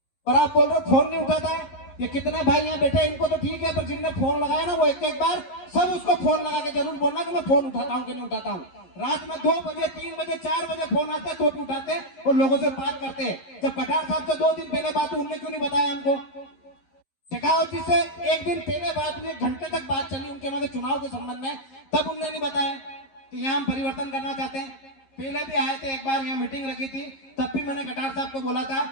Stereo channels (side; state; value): right; late; 11 ms